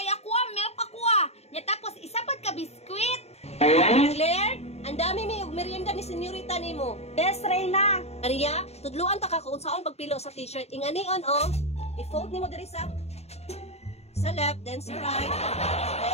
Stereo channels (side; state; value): right; late; 0.31 ms